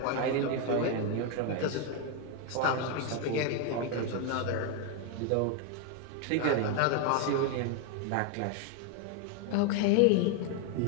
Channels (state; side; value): different; both; correlation 0.01